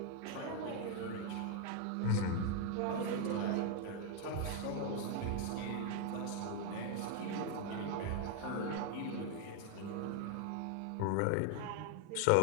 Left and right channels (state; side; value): different; both; correlation 0.00